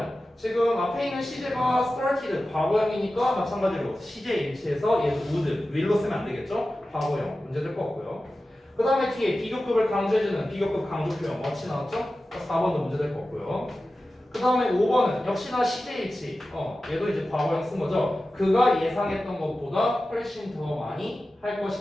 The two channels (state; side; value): normal; both; correlation 0.94